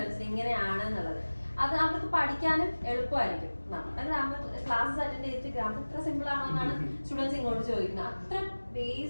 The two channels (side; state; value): both; inverted; correlation -1.00